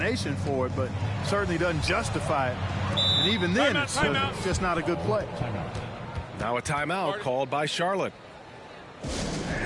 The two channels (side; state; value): both; identical; correlation 1.00